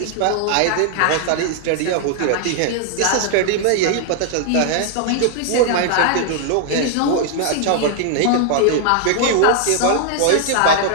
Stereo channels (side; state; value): both; different; correlation 0.00